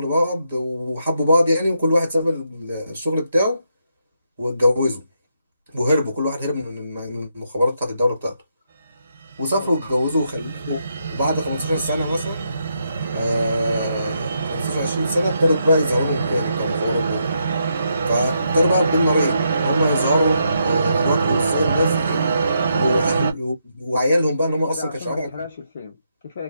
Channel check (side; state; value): both; inverted; correlation -0.79